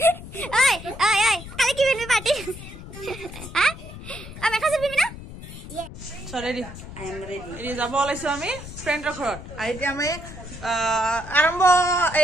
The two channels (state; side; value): noise; left; rumble, 13 dB below the sound